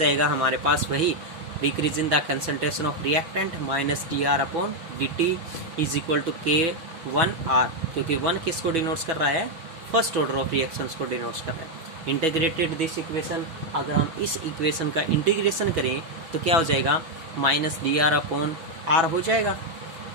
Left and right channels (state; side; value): late; left; 6.1 ms